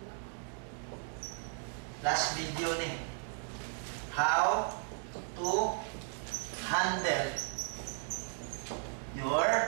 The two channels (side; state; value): left; silent; 54 dB below the other